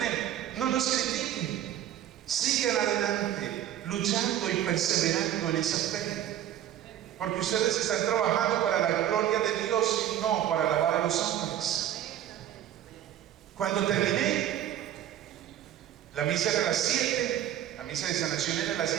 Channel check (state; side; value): quieter; left; 11.3 dB